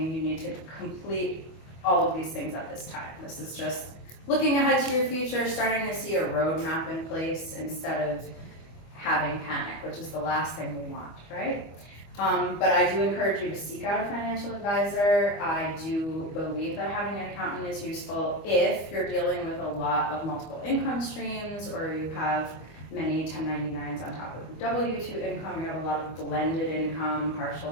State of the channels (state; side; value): late; right; 25 ms